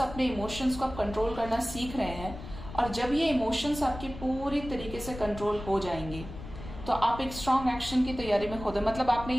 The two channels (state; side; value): noise; left; rumble, 12 dB below the sound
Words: अपने इमोशंस को आप कंट्रोल करना सीख रहे हैं, और जब ये इमोशंस आपके पूरी तरीके से कंट्रोल हो जाएंगे तो आप एक स्ट्रॉन्ग एक्शन की तैयारी में खुद, मतलब आपने